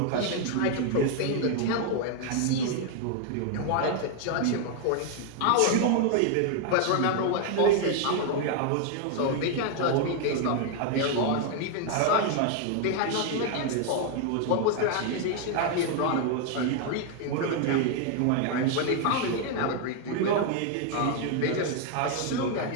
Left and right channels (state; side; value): different; both; correlation 0.01